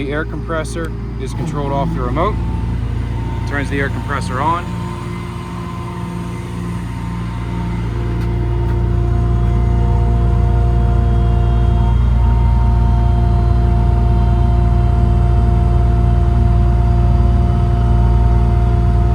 air compressor is controlled off the remote. Turns the air compressor on.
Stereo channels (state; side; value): identical; both; correlation 1.00